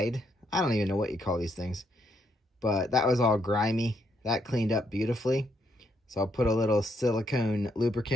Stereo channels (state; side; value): normal; both; correlation 0.76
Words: I don't even know what you call these things, but that was all grimy. That cleaned up beautifully. So I'll put a little silicone